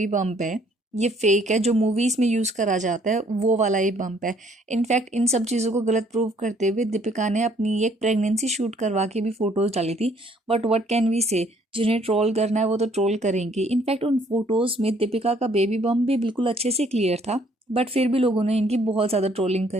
बम्प है ये फेक है, जो मूवीज़ में यूज़ करा जाता है वो वाला ही बम्प है। इनफैक्ट इन सब चीज़ों को गलत प्रूव करते हुए दीपिका ने अपनी एक प्रेगनेंसी शूट करवा के भी फ़ोटोज़ डाली थी। बट व्हाट कैन वी से, जिन्हें ट्रोल करना है वो तो ट्रोल करेंगे। इनफैक्ट उन फोटोज़ में दीपिका का बेबी बम भी बिल्कुल अच्छे से क्लियर था, बट फिर भी लोगों ने इनकी बहुत ज़्यादा ट्रोलिंग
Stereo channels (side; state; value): both; normal; correlation 0.63